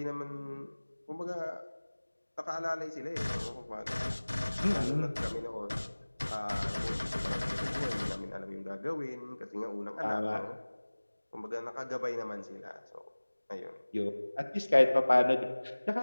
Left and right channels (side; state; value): both; inverted; correlation -1.00